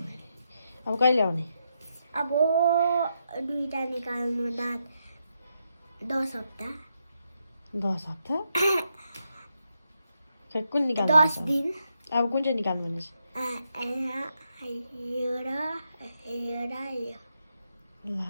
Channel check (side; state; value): both; inverted; correlation -0.82